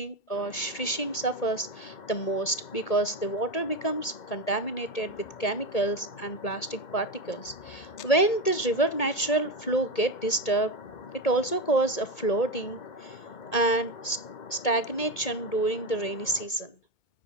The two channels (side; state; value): right; late; 1.8 ms